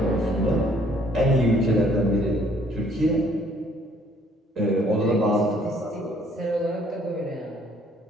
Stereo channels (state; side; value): normal; both; correlation 0.62